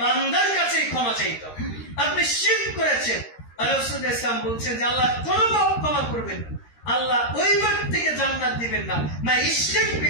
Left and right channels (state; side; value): late; right; 13 ms